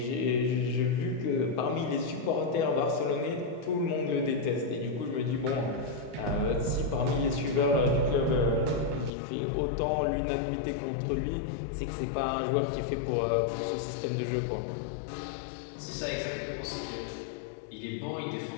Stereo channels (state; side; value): drops out; right; at 9.1 s